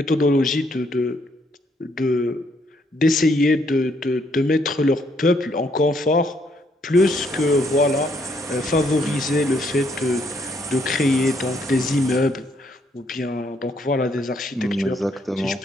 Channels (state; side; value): normal; both; correlation 0.71